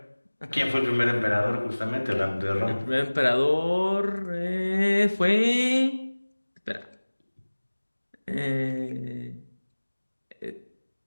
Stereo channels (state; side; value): inverted; both; correlation -1.00